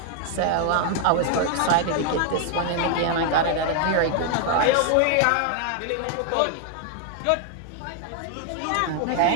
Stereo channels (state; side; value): different; both; correlation 0.00